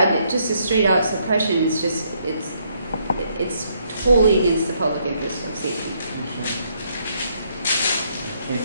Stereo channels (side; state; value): both; inverted; correlation -0.72